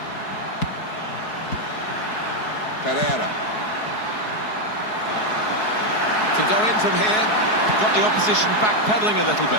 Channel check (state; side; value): late; right; 4.7 ms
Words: Pereira. Can go in from here. Got the opposition backpedaling a little